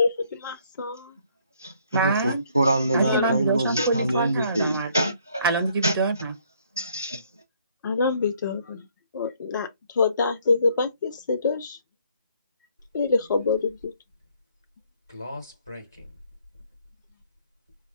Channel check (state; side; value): inverted; both; correlation -0.65